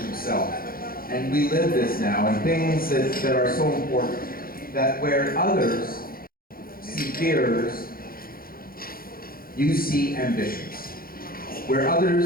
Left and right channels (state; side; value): late; right; 0.42 ms